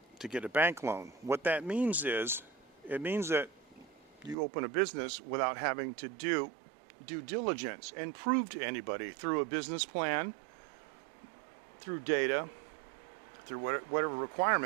to get a bank loan. What that means is, it means that you open a business without having to do due diligence and prove to anybody through a business plan, through data, through whatever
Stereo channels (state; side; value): drops out; left; at 4.4 s